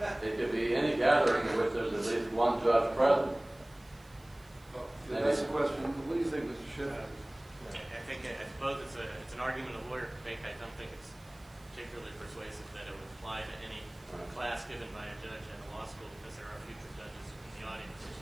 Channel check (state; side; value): noise; right; hiss, 27 dB below the sound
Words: It could be any gathering in which there's at least one judge present. That's the question. What do you think, Mr. Schiff? I suppose it's an argument a lawyer could make. I don't think it's particularly persuasive that it would apply to any class given by a judge at a law school, because there are future judges in the audience.